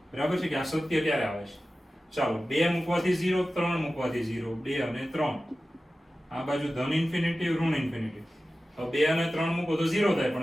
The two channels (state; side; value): normal; both; correlation 0.95